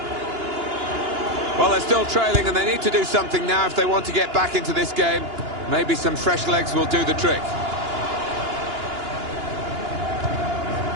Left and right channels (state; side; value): late; left; 2.9 ms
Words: Well, they're still trailing and they need to do something now if they want to get back into this game. Maybe some fresh legs will do the trick.